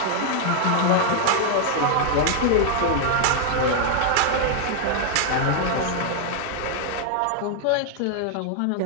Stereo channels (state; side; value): different; both; correlation 0.00